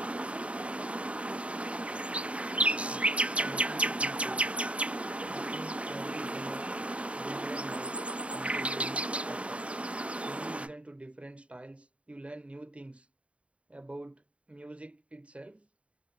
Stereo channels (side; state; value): left; late; 0.062 ms